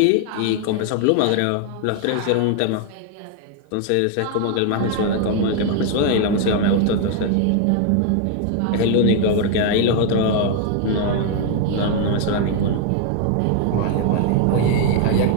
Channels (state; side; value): different; both; correlation 0.00